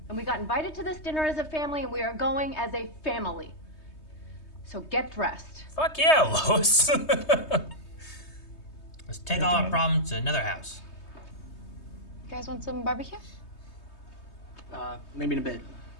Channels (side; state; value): right; late; 3.2 ms